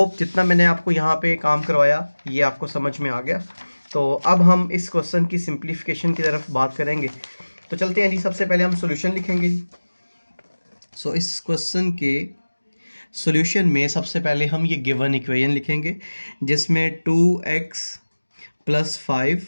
जितना मैंने आपको यहाँ पे काम करवाया ये आपको समझ में आ गया। तो अब हम इस क्वेश्चन की सिंप्लीफिकेशन की तरफ बात करेंगे। तो चलते हैं जी, सबसे पहले हम सॉल्यूशन लिखेंगे जी। सो इस क्वेश्चन के सॉल्यूशन में सबसे पहले हम ये गिवन इक्वेशन लिखेंगे जिसमें 2x +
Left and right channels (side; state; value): both; inverted; correlation -1.00